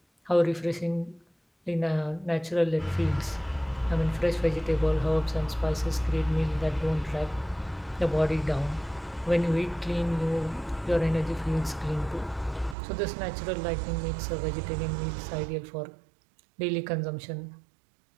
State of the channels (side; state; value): left; drops out; at 12.8 s